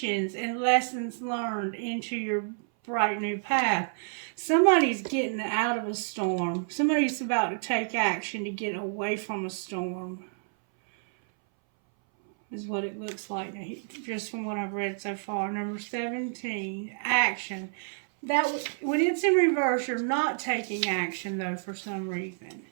and lessons learned into your bright new path. Somebody's getting out of a storm. Somebody's about to take action to get away from a storm. Is what it looks like just from what I've read so far. Number 17, action. That when it's in reverse, you're not taking action though for some reason.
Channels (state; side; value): silent; left; 59 dB below the other